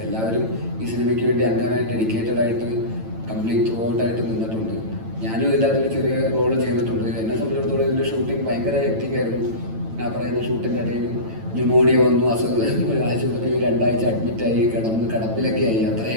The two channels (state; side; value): late; left; 9.0 ms